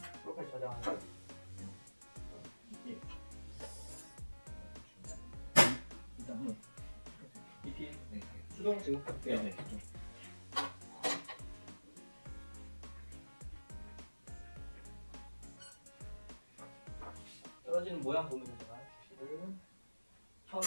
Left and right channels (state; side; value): inverted; both; correlation -1.00